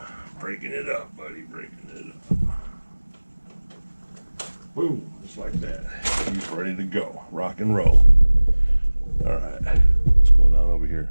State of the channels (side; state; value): both; inverted; correlation -1.00